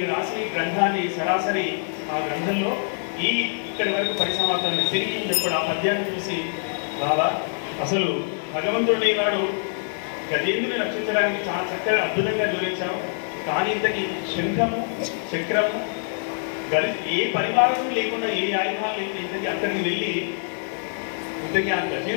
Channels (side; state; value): right; silent; 62 dB below the other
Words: రాసి గ్రంథాన్ని సరాసరి ఆ గ్రంథంలో ఇక్కడి వరకు పరిసమాప్తం తిరిగి ఇప్పుడు ఆ పద్యాన్ని చూసి బాబా అసలు భగవంతుడి నాడు గజేంద్రుని రక్షించడానికి చాలా చక్కగా అద్భుతంగా వివరించావు. కానీ ఇంతటి శంఖము చక్రము ఏ పరివారం లేకుండా ఏ ఆయుధాలు లేకుండా ఇంతకీ అక్కడికి వెళ్ళి ఇంతకీ ఆ